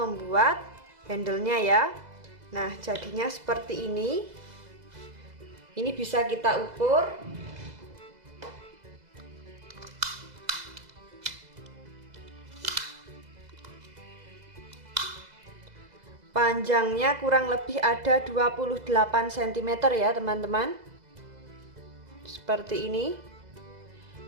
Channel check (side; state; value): left; late; 2.0 ms